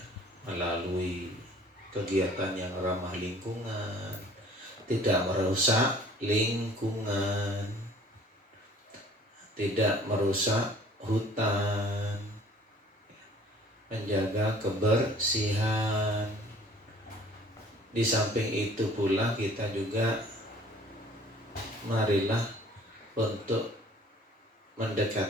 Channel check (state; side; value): normal; both; correlation 0.52